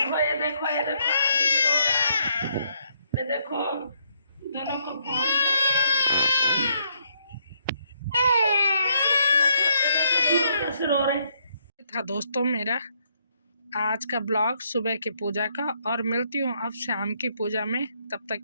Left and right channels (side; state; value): both; inverted; correlation -0.72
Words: ये देखो ये देखो आदि भी रो रहा है। ये देखो दोनों को फोन कैसे रो रहे था। दोस्तों मेरा आज का ब्लॉग सुबह की पूजा का, और मिलती हूँ अब शाम की पूजा में। तब तक